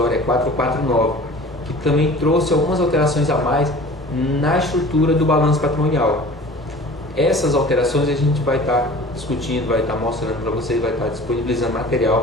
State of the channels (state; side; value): normal; both; correlation 0.43